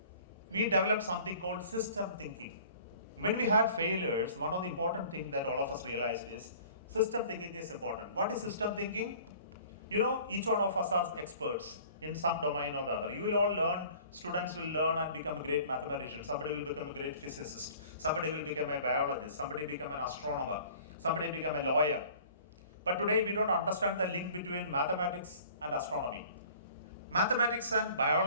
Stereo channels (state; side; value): inverted; both; correlation -0.48